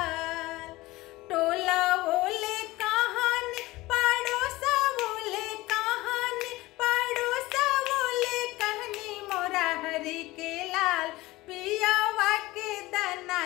टोला ओले कहानी पड़ोसा ओले कहानी, पड़ोसा ओले कहनी मोरा हरि के लाल। पियावा के दाना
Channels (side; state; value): right; quieter; 19.3 dB